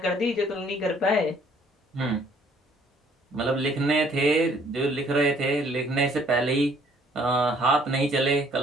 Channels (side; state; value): both; normal; correlation 0.61